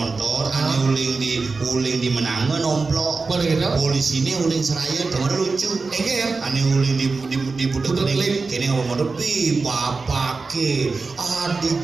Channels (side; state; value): left; quieter; 4.1 dB